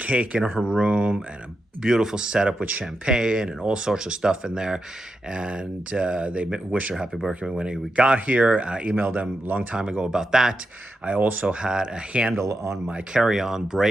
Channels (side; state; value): both; normal; correlation 0.87